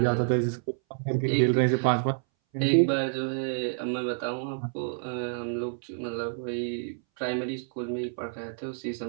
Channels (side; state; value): left; silent; 59 dB below the other